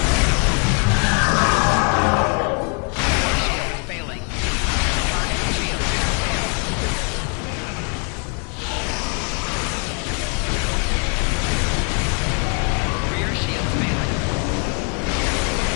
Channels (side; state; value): right; quieter; 39.0 dB